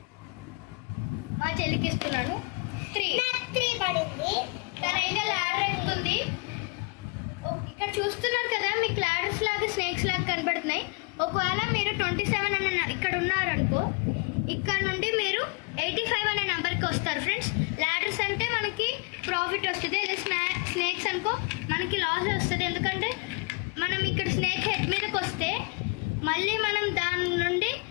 మా చెల్లికి ఇస్తున్నాను. 3 పడింది. తనైతే ల్యాడర్ ఎక్కుతుంది. ఇక్కడ చూస్తున్నారు కదా, మీకు ల్యాడర్స్ లాగా స్నేక్స్ లాగా కనబడుతున్నాయి. ఒకవేళ మీరు 27 అనే ఇక్కడ ఉన్నారనుకో, ఇక్కడ నుండి మీరు 85 అనే నెంబర్కి వస్తారు ఫ్రెండ్స్. ల్యాడర్స్ అంటే మనకి ప్రాఫిట్ వస్తుంది, అదే స్నేక్స్ అనుకో మనకి లాస్ వస్తుంది. ఎందుకంటే మనం ఇక్కడ స్నేక్ హెడ్ మీదకి వస్తే మళ్ళీ మనం దాని నుండి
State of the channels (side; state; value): right; quieter; 30.4 dB